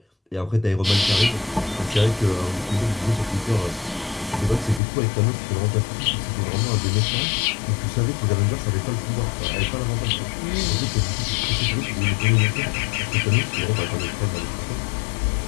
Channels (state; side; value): drops out; right; at 4.8 s